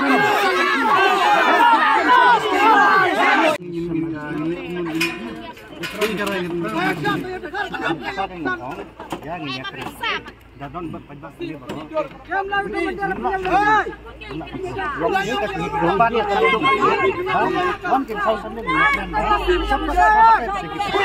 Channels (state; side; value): identical; both; correlation 1.00